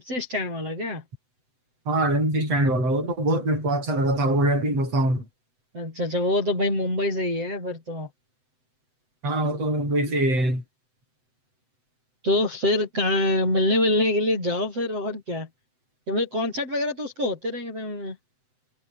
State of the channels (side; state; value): left; late; 7.9 ms